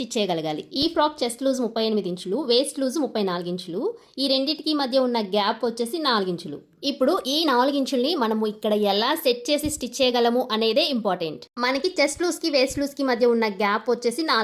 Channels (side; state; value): both; identical; correlation 1.00